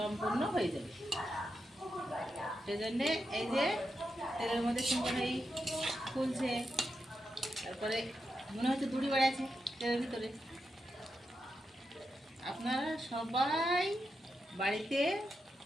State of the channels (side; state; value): both; normal; correlation 0.86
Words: হয়ে যাবে। সেজন্যে এই যে তেলের মধ্যে সুন্দর এই ফুলছে, তারপরে মনে হচ্ছে দড়ি বাড়াচ্ছে তেলের ভিতরে। আপনারা সবাই বাড়িতে